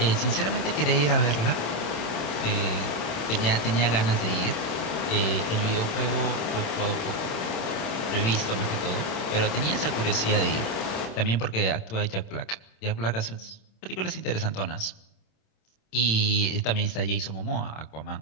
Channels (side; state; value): right; late; 27 ms